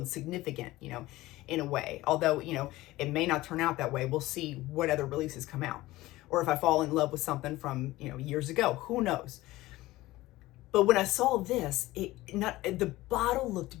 significant, in a way. Although, it may not turn out that way. We'll see what other releases come out. Or if I fall in love with something from, years ago, who knows? But when I saw this, the bottle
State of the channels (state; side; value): quieter; right; 17.9 dB